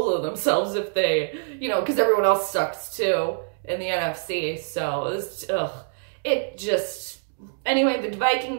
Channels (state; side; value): silent; left; digital silence